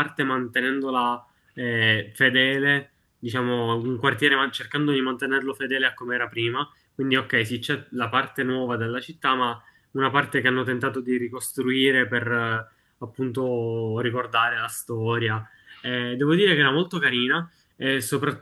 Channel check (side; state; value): both; identical; correlation 1.00